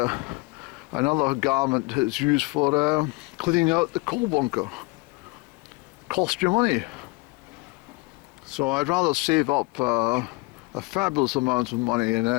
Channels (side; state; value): right; quieter; 25.6 dB